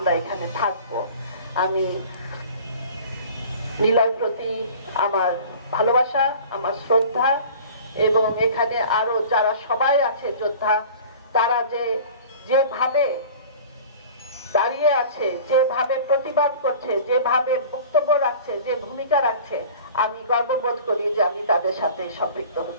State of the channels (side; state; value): both; inverted; correlation -0.43